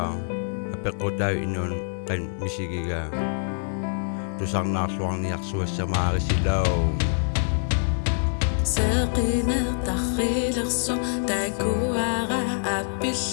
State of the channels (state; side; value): silent; right; digital silence